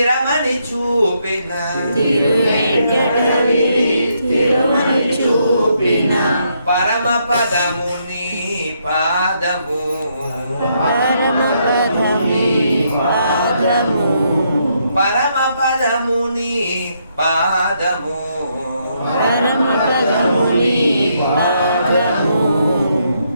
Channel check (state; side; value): inverted; both; correlation -0.75